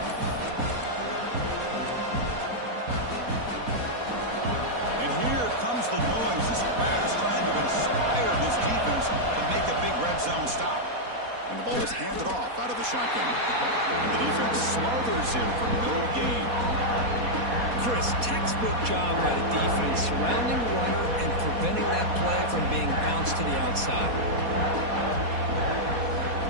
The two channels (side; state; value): left; late; 4.2 ms